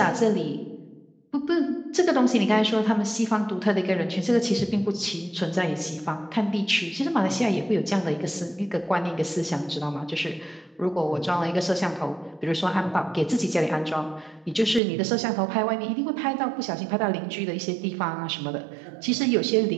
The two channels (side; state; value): left; drops out; at 14.8 s